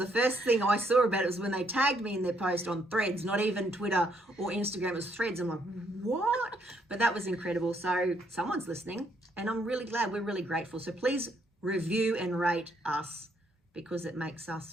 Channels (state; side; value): normal; both; correlation 0.72